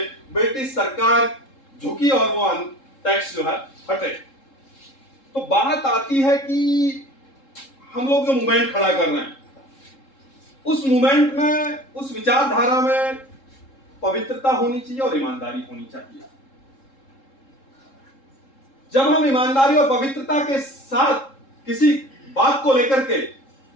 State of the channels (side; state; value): right; late; 3.7 ms